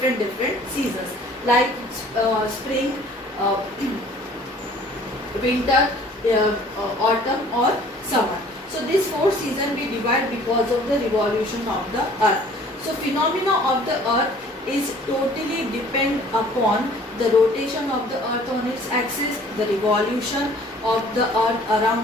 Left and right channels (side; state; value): both; normal; correlation 0.53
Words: seasons, like spring, winter, autumn or summer. So this 4 seasons we divide because of the revolution of the earth. So phenomena of the earth is totally depend upon the rotation of the earth on its axis, the revolution of the earth